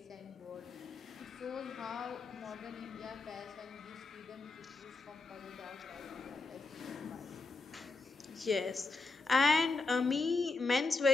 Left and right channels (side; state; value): right; quieter; 3.7 dB